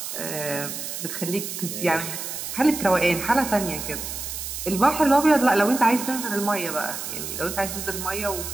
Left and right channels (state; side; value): noise; right; hiss, 6 dB below the sound